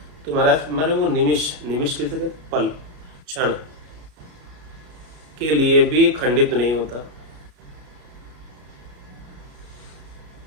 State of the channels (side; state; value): left; late; 33 ms